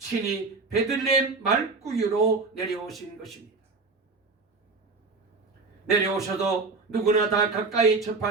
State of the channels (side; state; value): left; quieter; 4.0 dB